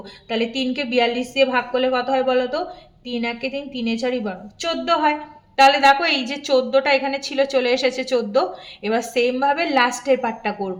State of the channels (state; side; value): identical; both; correlation 1.00